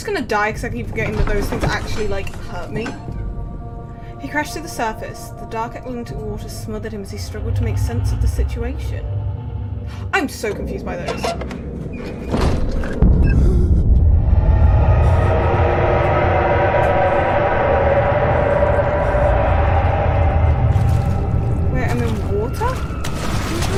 gonna die because I keep forgetting that those things actually, like, hurt me. He crashed to the surface. The dark Atlantic water smothered him as he struggled to make sense of the situation. I'm so confused by those. Wait, I'm in water?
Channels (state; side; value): identical; both; correlation 1.00